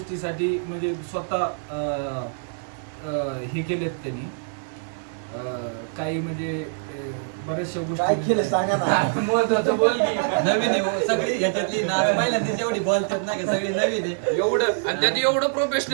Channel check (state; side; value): silent; left; digital silence